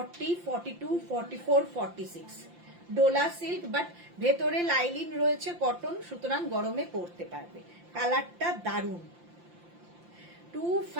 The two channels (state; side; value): late; left; 5.8 ms